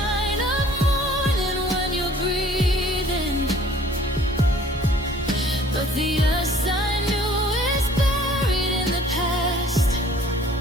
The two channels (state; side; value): normal; both; correlation 0.54